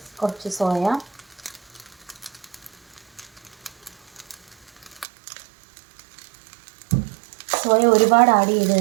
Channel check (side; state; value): left; drops out; at 5.1 s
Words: കുറച്ച് സോയ, ഒരുപാട് ആഡ് ചെയ്ത്